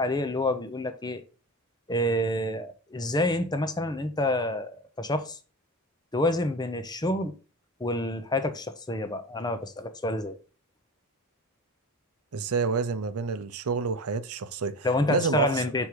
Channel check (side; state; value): both; normal; correlation 0.32